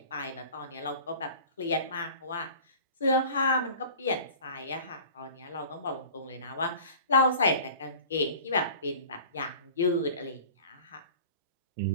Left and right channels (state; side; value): inverted; both; correlation -0.41